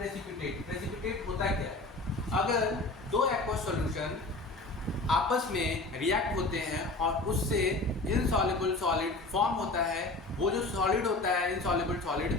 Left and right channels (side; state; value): right; quieter; 3.1 dB